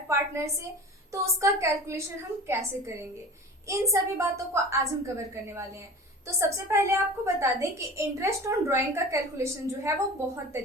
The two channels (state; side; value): normal; both; correlation 0.37